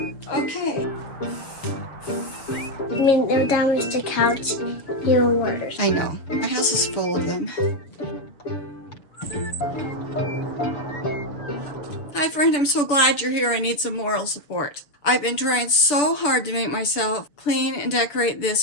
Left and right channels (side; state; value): right; late; 6.9 ms